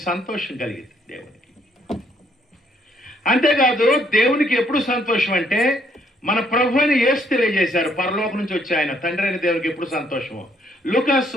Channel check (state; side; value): normal; both; correlation 0.68